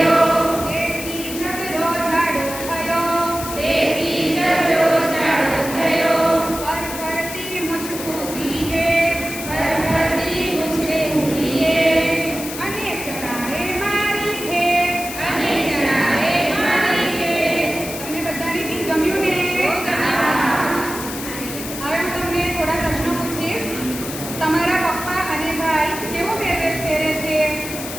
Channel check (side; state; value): left; noise; hiss, 9 dB below the sound